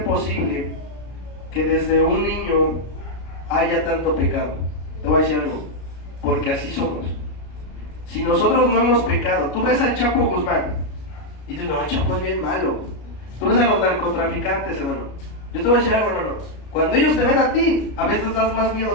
posible que desde un niño haya tanto pecado? Te voy a decir algo, porque así somos. Si nosotros no hemos pecado, tú ves al Chapo Guzmán y dices, no, el Chapo es bien malo. Tú ves a los narcotraficantes, hermano. Yo te voy a decir algo, hermano, cuando ellos te ven a ti, a veces das más miedo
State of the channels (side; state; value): right; late; 33 ms